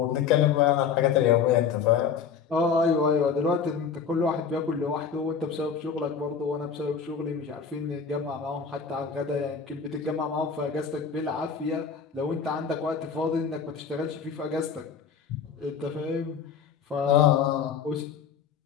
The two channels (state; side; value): quieter; right; 6.5 dB